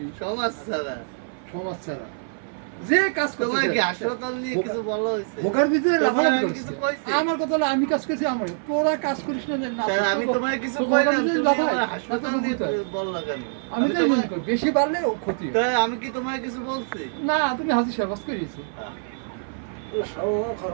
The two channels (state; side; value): silent; left; 56 dB below the other